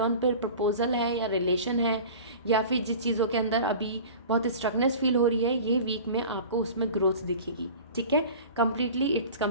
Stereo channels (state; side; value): inverted; both; correlation -0.39